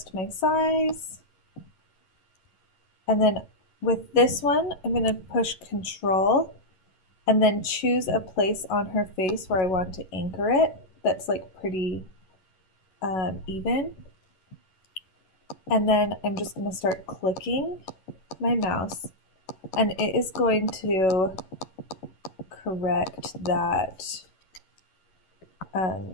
my size. And then with this one, I'm going to push Control and then choose a place on her face where I want to anchor it that's like pretty even. And then I'm just going to start clicking my mouse, and it is going to correct that.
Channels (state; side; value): late; right; 11 ms